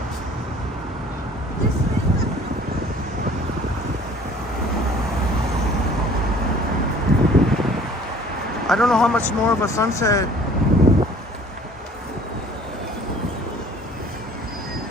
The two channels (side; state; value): both; normal; correlation 0.52